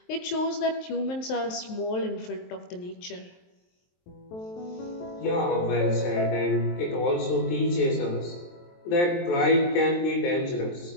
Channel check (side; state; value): right; late; 23 ms